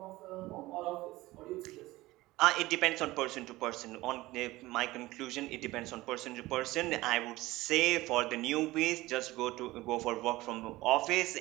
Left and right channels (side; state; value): left; quieter; 18.7 dB